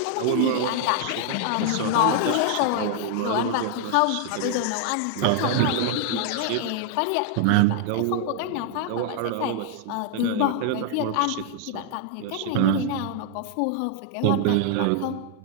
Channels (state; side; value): different; both; correlation 0.00